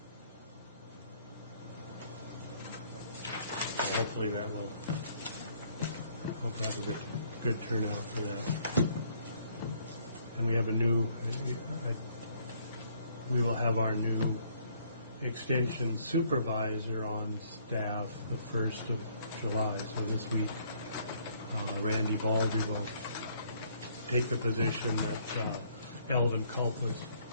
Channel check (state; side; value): inverted; both; correlation -0.65